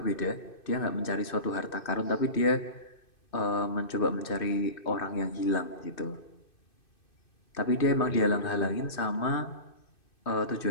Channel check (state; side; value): late; right; 2.6 ms